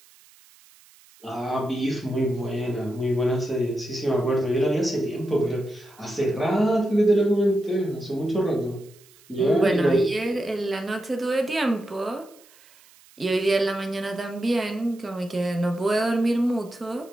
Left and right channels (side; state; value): right; noise; hiss, 27 dB below the sound